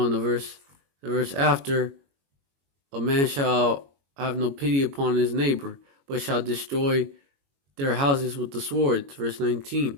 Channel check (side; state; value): left; late; 21 ms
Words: the verse after, a man shall have no pity upon his neighbor, but shall destroy their houses with the sword. Verse 19,